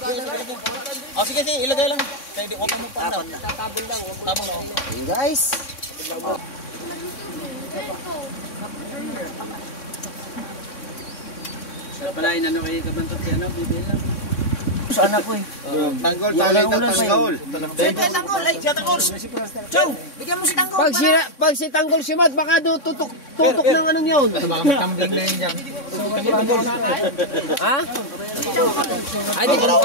Oh, sige, ilagay lang. Kaya di, huwag ka magpapal. Tabon lang. Tabon lang. Hey guys. Oh. Sa pala, inano kayo kabantot yan, bibil lang. Saan ako eh? Tanggol, tanggol. Tanggol, ay, siya Tanggol. Chow, bigyan mo si Tanggol. Pag si Tanggol si Mat, baka tutok ng anong yun. Baka magtambling na yun dyan. Ha? Ay, di ko na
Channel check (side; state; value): right; late; 3.6 ms